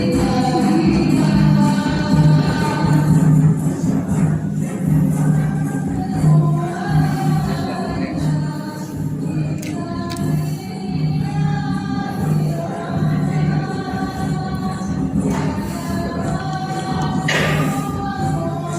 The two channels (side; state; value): both; identical; correlation 1.00